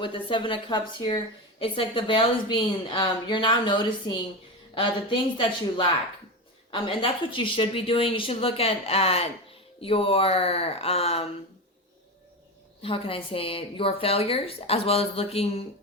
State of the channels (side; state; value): both; normal; correlation 0.20